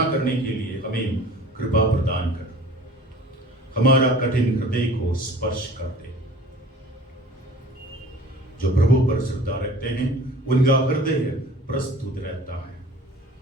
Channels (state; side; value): normal; both; correlation 0.45